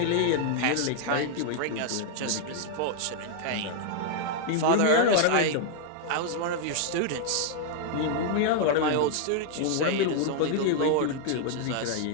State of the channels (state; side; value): different; both; correlation 0.00